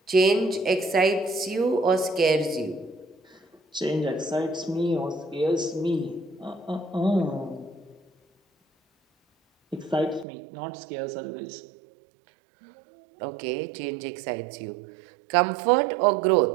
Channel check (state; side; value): drops out; left; at 10.2 s